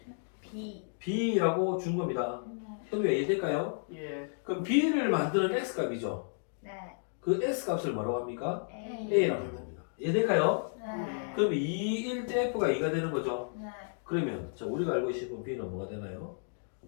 B. b라고 준 겁니다. 네. 현우야 이해될까요? 예. 그럼 b를 만드는 x값이죠. 네. 그 x값을 뭐라고 합니까? A. a라고 합니다. 이해될까요? 네. 그럼 2일 때 f가 2가 되는 거죠. 네. 그러면 자 우리가 알고 있는 b는 뭐가 되나요?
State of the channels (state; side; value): silent; right; digital silence